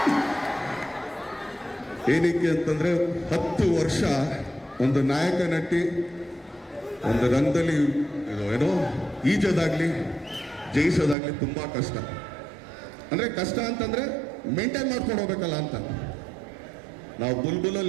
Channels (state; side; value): drops out; left; at 11.2 s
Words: ಏನಕ್ಕೆ ಅಂತಂದ್ರೆ 10 ವರ್ಷ ಒಂದು ನಾಯಕ ನಟಿ ಒಂದು ರಂಗದಲ್ಲಿ ಏನೋ ಈಜೋದಾಗ್ಲಿ ಜಯಿಸೋದಾಗ್ಲಿ ತುಂಬಾ ಕಷ್ಟ. ಅಂದ್ರೆ ಕಷ್ಟ ಅಂತಂದ್ರೆ ಮೇಂಟೈನ್ ಮಾಡ್ಕೊಂಡು ಹೋಗ್ಬೇಕಲ್ಲ ಅಂತ. ನಾವು